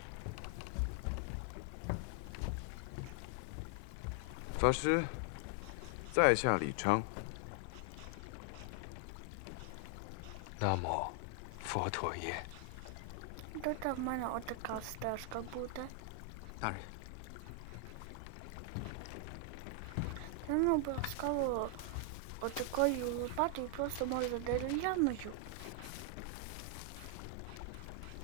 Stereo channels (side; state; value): both; different; correlation 0.00